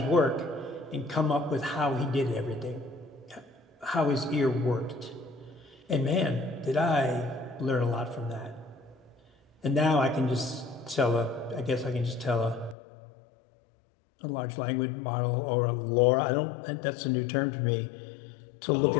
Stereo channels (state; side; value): drops out; right; at 12.8 s